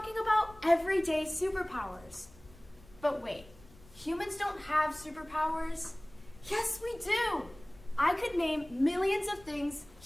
about everyday superpowers. But wait, humans don't have superpowers? Yes, we do! I could name millions of things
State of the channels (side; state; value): left; noise; rumble, 23 dB below the sound